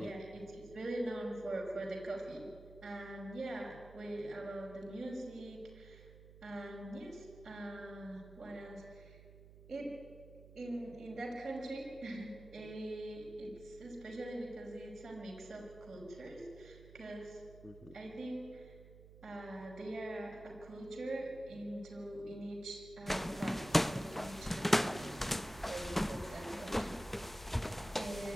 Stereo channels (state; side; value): noise; right; hum, 17 dB below the sound